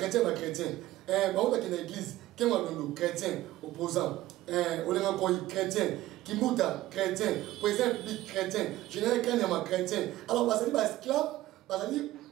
ba on est dans l'église qui est chrétien opposant on est encore chrétien Kimuta chrétien président public chrétien général Kanyama chrétien alors ba sali ba esclave ba sali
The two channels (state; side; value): quieter; left; 16.0 dB